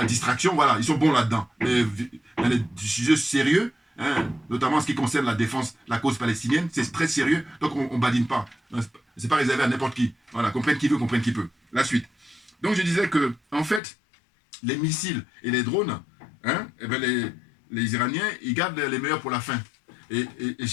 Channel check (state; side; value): drops out; right; at 13.8 s